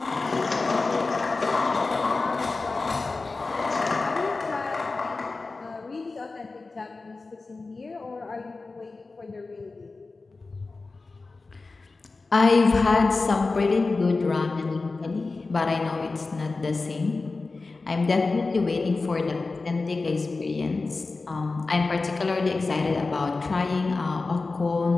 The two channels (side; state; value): right; quieter; 3.7 dB